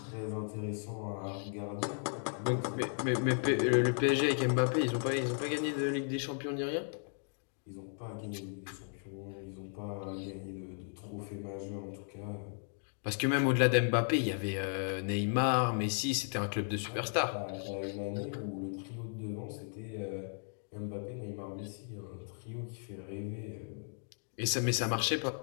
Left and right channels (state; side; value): silent; right; 54 dB below the other